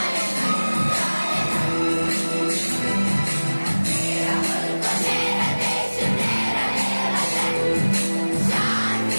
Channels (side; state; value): both; inverted; correlation -1.00